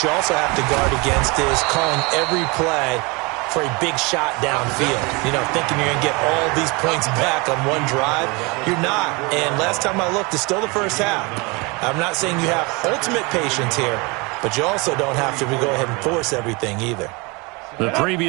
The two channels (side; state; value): left; quieter; 27.5 dB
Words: you also have to guard against is calling every play for a big shot downfield. You know, thinking you're going to get all these points back on one drive. You're not. And last time I looked, it's still the first half. I'm not saying you have ultimate patience here, but you also don't have to go ahead and force everything either. The